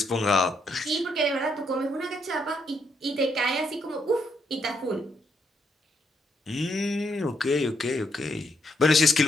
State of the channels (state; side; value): normal; both; correlation 0.76